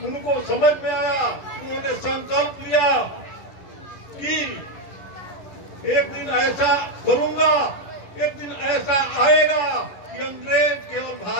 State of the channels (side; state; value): right; late; 11 ms